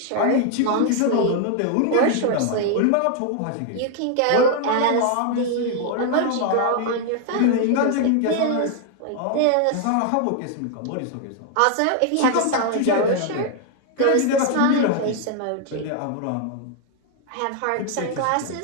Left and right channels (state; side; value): different; both; correlation 0.00